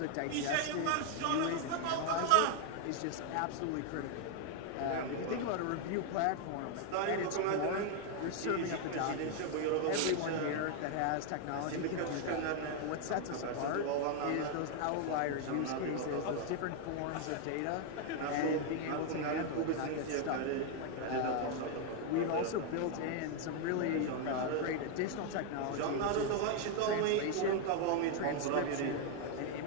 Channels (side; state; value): both; different; correlation 0.00